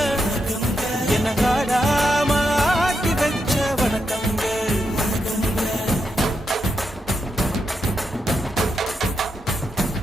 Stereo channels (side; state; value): both; normal; correlation 0.83